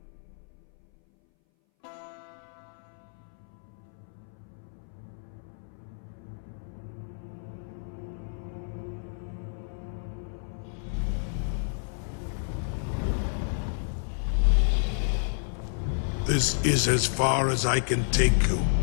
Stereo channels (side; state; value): right; silent; 58 dB below the other